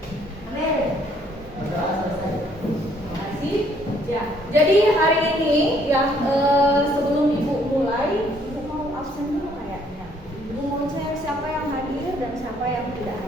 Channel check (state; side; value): normal; both; correlation 0.65